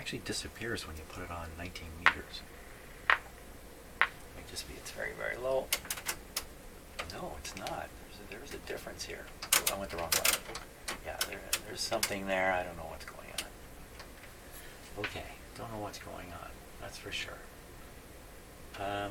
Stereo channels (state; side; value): identical; both; correlation 1.00